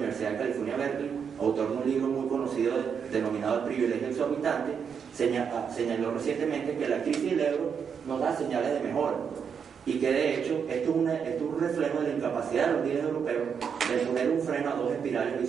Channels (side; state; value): left; quieter; 6.9 dB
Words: de California, Berkeley, autor de un libro muy conocido denominado El privilegio exorbitante, señaló recientemente que la crisis del euro nos da señales de mejora y que de hecho esto es un reflejo de la incapacidad de los líderes europeos de poner un freno a 2 espirales